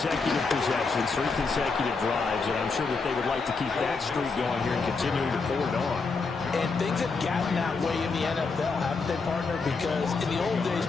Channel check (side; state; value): right; quieter; 4.4 dB